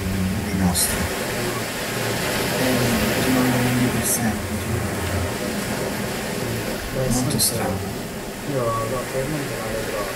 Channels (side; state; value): both; identical; correlation 1.00